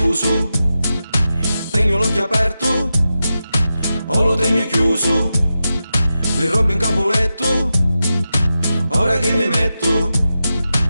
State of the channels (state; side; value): inverted; both; correlation -0.91